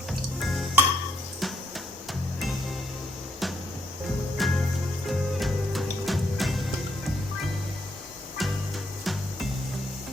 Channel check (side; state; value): both; normal; correlation 0.76